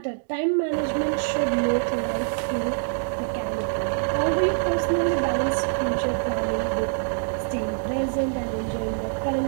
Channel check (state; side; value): silent; left; digital silence